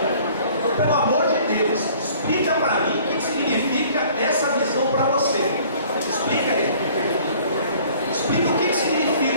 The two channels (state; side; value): inverted; both; correlation -0.53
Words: Então, pelo amor de Deus, explica para mim o que significa essa visão para você. Explica aí. Explica o que